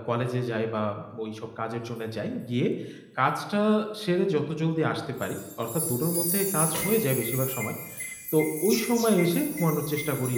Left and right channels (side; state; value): both; identical; correlation 1.00